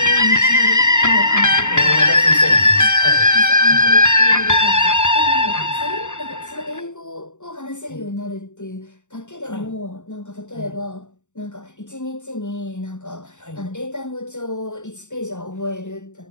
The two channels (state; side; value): late; right; 0.84 ms